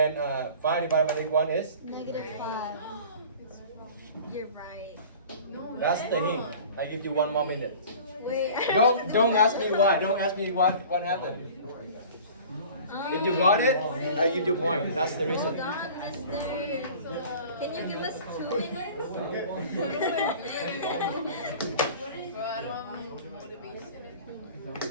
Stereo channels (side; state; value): both; inverted; correlation -0.43